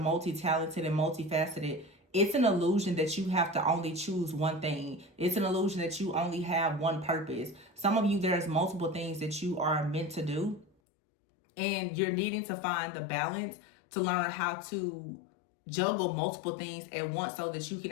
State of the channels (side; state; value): right; drops out; at 10.7 s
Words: and multifaceted. It's an illusion that you have to only choose one thing. It's an illusion that you only have one purpose. Some of you, there's multiple things that you are meant to do, and you're needing to find the balance to learn how to juggle multiple things at once so that you can